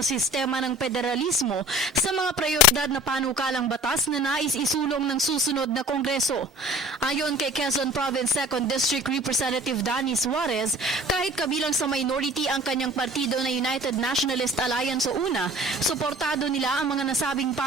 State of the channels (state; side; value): normal; both; correlation 0.46